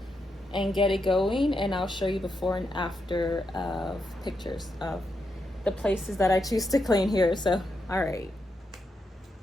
and get it going, and I'll show you before and after of pictures of the places that I choose to clean here. So all right.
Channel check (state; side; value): normal; both; correlation 0.83